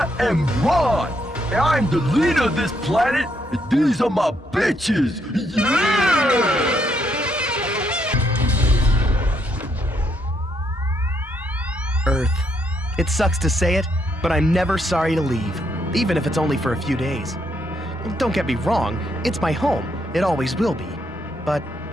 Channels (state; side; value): normal; both; correlation 0.75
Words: am Ron, and I'm the leader of this planet, and these are my bitches! Yeah! Earth. It sucks to say it, but I'm never sorry to leave, even if it's only for a few days. Don't get me wrong, it's my home. It always will be. But